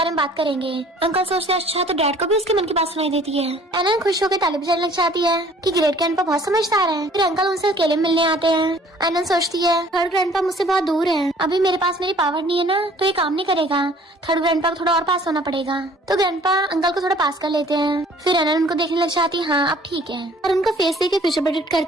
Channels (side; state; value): both; normal; correlation 0.54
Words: में बात करेंगे। अंकल सोचते हैं अच्छा तो डैड को भी उसके मन की बात सुनाई देती है। एनन खुश होकर ताली बजाने लग जाती है कि ग्रेट ग्रैंडपा बहुत समझदार है। फिर अंकल उनसे अकेले मिलने आते हैं। एनन सोचती है थर्ड ग्रैंडपा मुझसे बहुत दूर है, अभी मेरे पास मेरी पावर नहीं है ना तो ये काम नहीं करेगा, थर्ड ग्रैंडपा को थोड़ा और पास होना पड़ेगा। तो ग्रैंडपा अंकल को थोड़ा पास कर लेते हैं। फिर एनन उनको देखने लग जाती है हाँ अब ठीक है, और उनका फेस देख के फ्यूचर प्रेडिक्ट